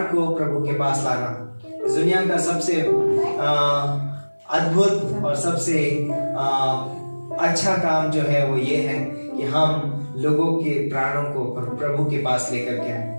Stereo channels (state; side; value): inverted; both; correlation -1.00